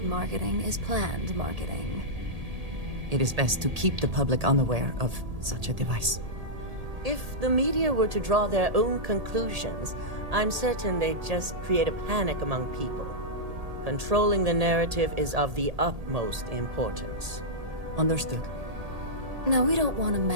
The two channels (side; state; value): left; late; 1.8 ms